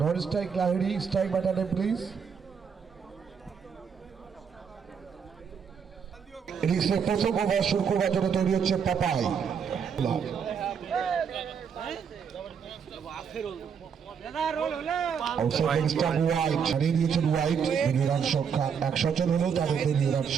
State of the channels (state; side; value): quieter; left; 6.8 dB